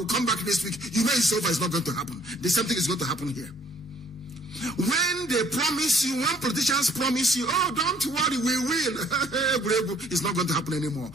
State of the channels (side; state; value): both; normal; correlation 0.61